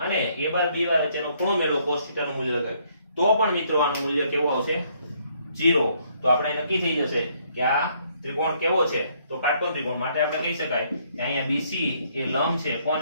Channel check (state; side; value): inverted; both; correlation -0.68